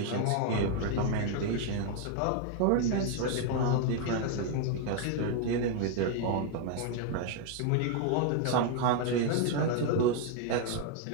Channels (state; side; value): different; both; correlation 0.01